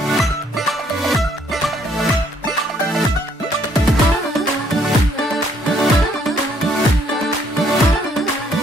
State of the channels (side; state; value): both; normal; correlation 0.67